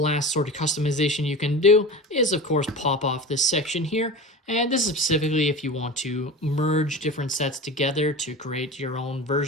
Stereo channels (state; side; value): normal; both; correlation 0.31